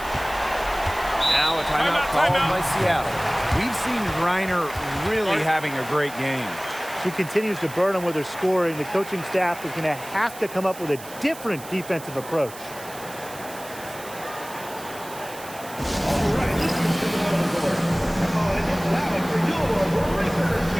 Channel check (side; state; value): right; noise; hiss, 16 dB below the sound